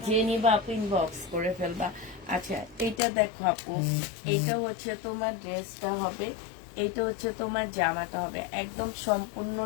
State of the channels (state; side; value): drops out; right; at 3.0 s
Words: যে নিবা আপু ইনবক্স করে ফেলবা। আচ্ছা, এইটা দেখো আপু, এইটা হচ্ছে তোমার ড্রেসটা হবে, এইটা হচ্ছে তোমার জামাটা হবে, একদম